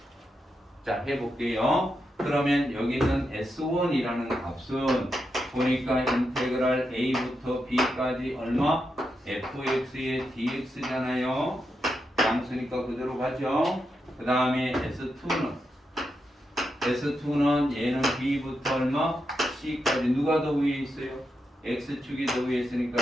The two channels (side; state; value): both; normal; correlation 0.85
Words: 자, 해볼게요. 그러면 여기 있는 s1이라는 값은 보니까 인테그랄 a부터 b까지 얼마? fx의 dx잖아요. 양수니까 그대로 가죠. 그 다음에 S2는 얘는 B부터 얼마? C까지 누가 더 위에 있어요? X축이 더 위에 있으니까